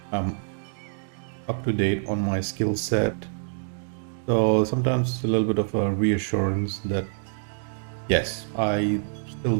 I'm up to date on my skill set. So sometimes it's a little bit of a reassurance that yes, I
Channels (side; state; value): left; silent; digital silence